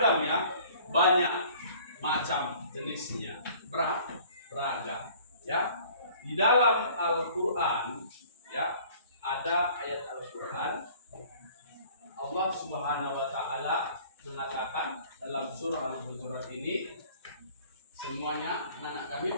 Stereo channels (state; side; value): inverted; both; correlation -0.52